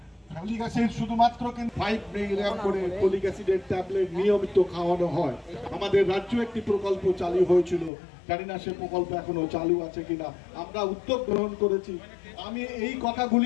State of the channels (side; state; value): right; drops out; at 7.9 s